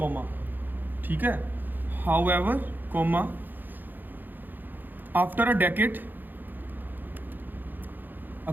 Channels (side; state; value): left; late; 0.089 ms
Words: ਠੀਕ ਹੈ। However comma, after a decade,